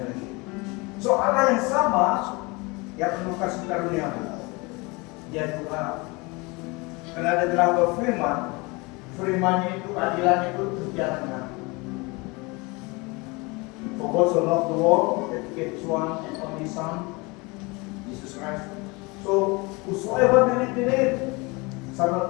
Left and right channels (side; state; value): right; quieter; 26.3 dB